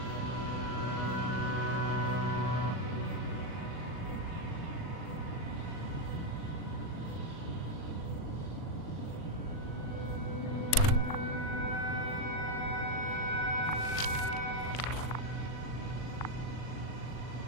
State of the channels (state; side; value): late; right; 40 ms